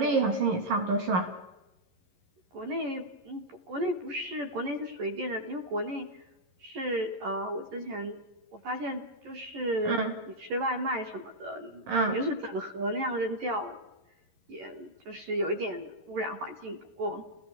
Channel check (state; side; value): late; left; 11 ms